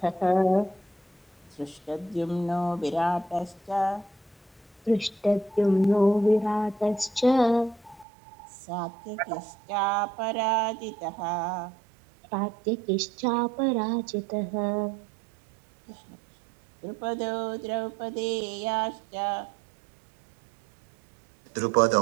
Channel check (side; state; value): left; drops out; at 8.1 s